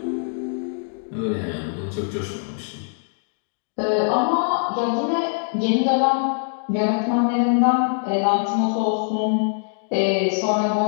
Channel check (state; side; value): silent; right; digital silence